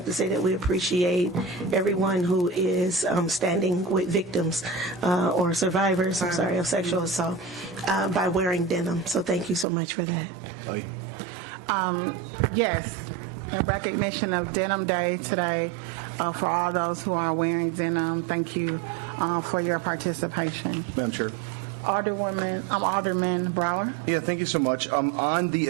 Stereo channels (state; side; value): drops out; left; at 9.7 s